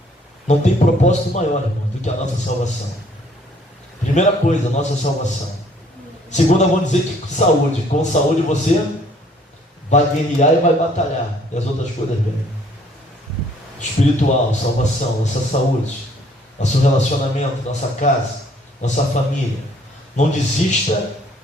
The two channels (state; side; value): normal; both; correlation 0.61